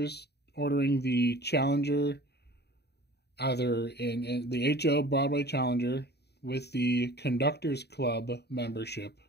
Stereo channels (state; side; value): late; right; 0.48 ms